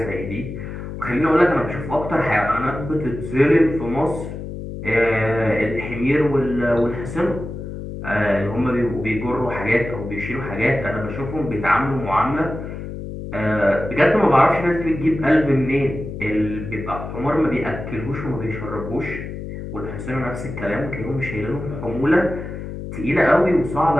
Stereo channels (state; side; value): noise; left; hum, 8 dB below the sound